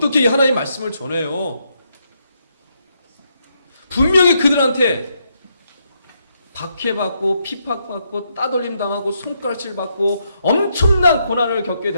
하나님 말씀을 전해요? 분명히 그들한테 박해받고 핍박받고 따돌림 당하고 손가락질 받고 엄청난 고난을 겪게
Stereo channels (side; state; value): both; inverted; correlation -0.78